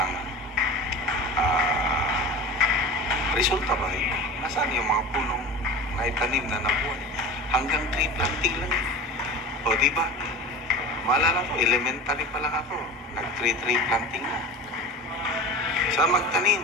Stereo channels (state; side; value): normal; both; correlation 0.34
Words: resulta ba? Nasaan yung mga punong naitanim na nabuhay? Hanggang tree planting lang. O diba? Maalala ko, elementary pa lang ako. Nag-tree planting na. Sa